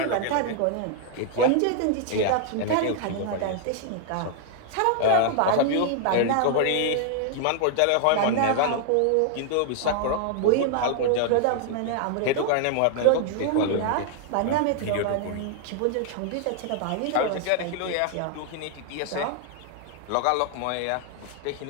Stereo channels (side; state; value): both; different; correlation 0.00